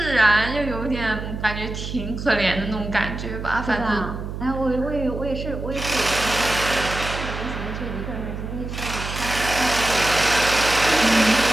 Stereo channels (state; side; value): noise; right; hum, 7 dB below the sound